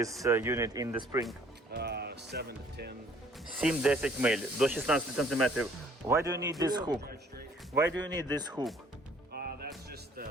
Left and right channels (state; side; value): normal; both; correlation 0.58